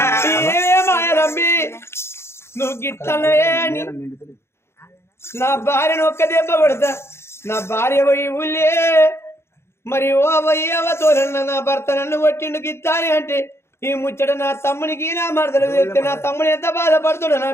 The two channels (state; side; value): late; right; 0.12 ms